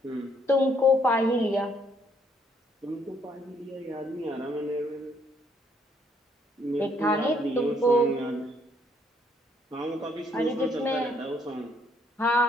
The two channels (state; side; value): normal; both; correlation 0.68